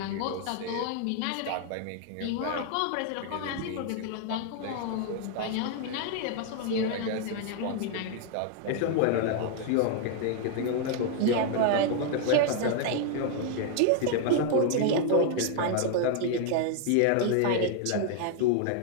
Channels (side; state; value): both; different; correlation 0.00